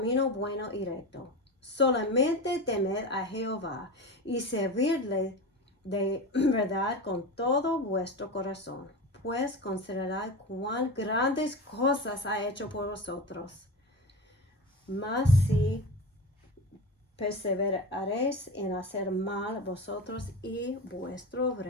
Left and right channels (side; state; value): both; normal; correlation 0.26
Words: bueno y recto. Solamente temed a Jehová y servidle de verdad con todo vuestro corazón, pues considerad cuán grandes cosas ha hecho por vosotros. Mas si perseveraréis en hacer mal, vosotros y vuestro